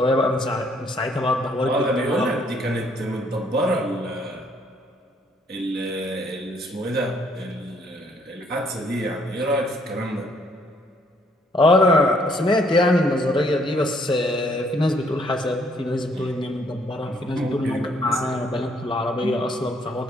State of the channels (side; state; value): both; normal; correlation 0.66